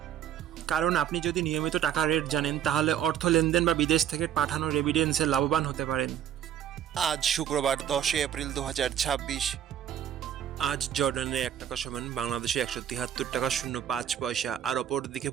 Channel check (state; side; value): quieter; left; 10.0 dB